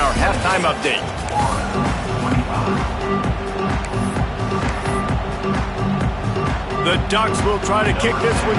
halftime update. The Ducks will try to kick this one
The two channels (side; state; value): both; identical; correlation 1.00